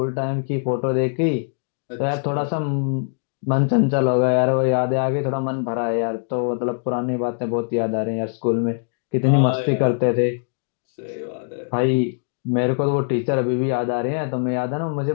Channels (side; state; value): right; silent; digital silence